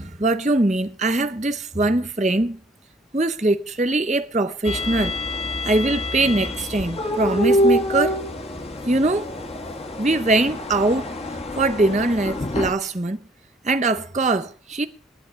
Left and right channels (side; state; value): both; normal; correlation 0.59